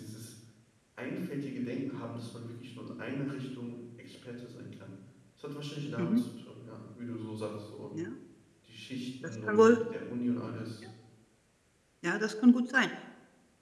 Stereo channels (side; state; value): both; identical; correlation 1.00